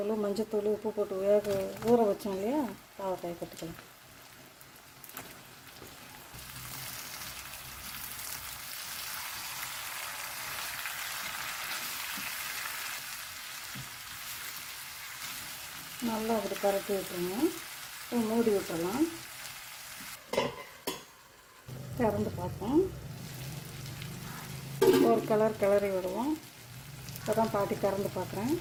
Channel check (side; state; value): both; identical; correlation 1.00